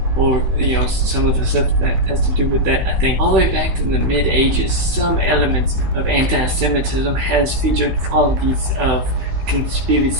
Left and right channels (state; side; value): late; left; 15 ms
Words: or some of the stuff that has to do with that. I think all the way back in the mid-ages, some elements of anti-Semitism has featured qualities of